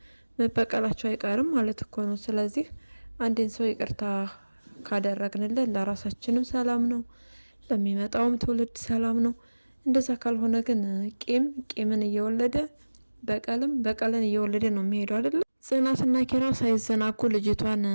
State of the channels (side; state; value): both; inverted; correlation -1.00